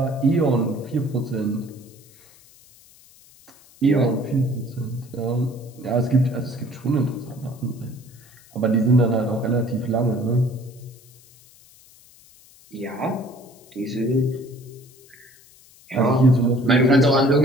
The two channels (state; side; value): noise; left; hiss, 26 dB below the sound